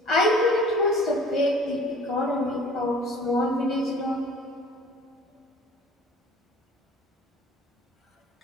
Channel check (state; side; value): normal; both; correlation 0.48